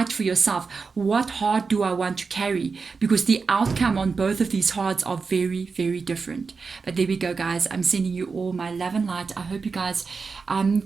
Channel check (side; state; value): left; quieter; 4.8 dB